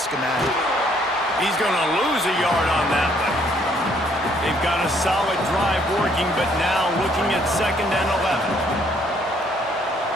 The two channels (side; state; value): both; normal; correlation 0.66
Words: He's going to lose a yard on that one. They've got a solid drive working, but now looking at 2nd and 11.